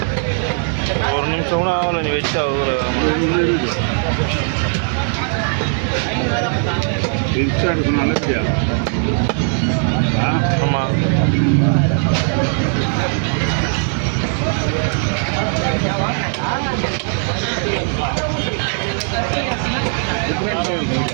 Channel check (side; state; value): left; silent; 55 dB below the other